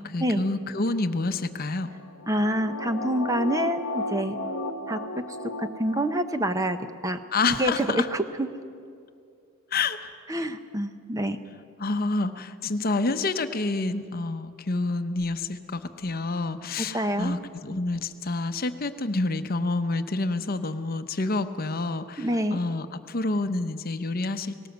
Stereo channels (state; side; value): normal; both; correlation 0.54